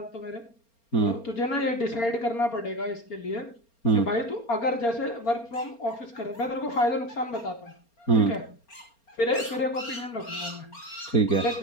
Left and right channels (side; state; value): right; late; 4.3 ms